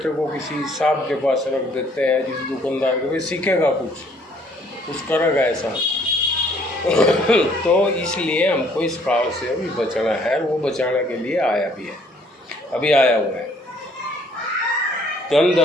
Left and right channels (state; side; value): normal; both; correlation 0.62